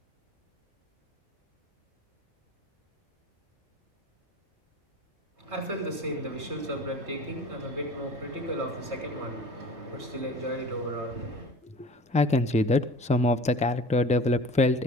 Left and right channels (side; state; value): both; normal; correlation 0.42